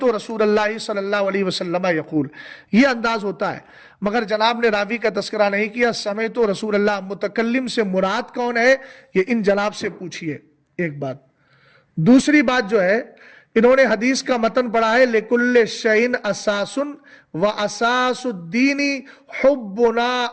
رسول اللہ صلی اللہ علیہ وسلم یقول. یہ انداز ہوتا ہے، مگر جناب نے راوی کا تذکرہ نہیں کیا. سمعت رسول اللہ، متکلم سے مراد کون ہے یہ ان جناب سے پوچھئے. ایک بات. دوسری بات جو ہے، انہوں نے حدیث کا متن پڑھا ہے لِكُلِّ شَيْءٍ أَسَاسٌ وَأَسَاسُ الدِّينِ حُبُّنَا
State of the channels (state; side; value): identical; both; correlation 1.00